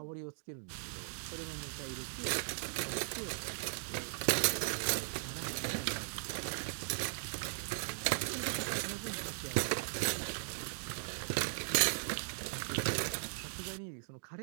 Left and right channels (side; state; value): left; silent; digital silence